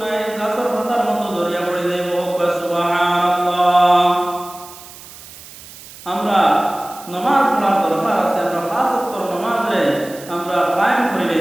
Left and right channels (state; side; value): noise; right; hiss, 17 dB below the sound